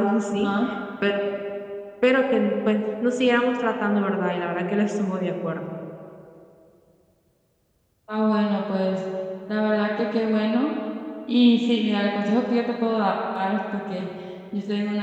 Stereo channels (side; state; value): both; identical; correlation 1.00